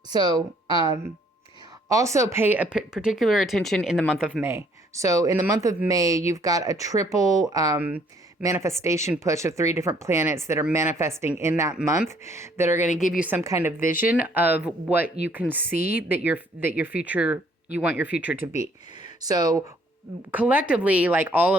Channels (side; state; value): both; normal; correlation 0.63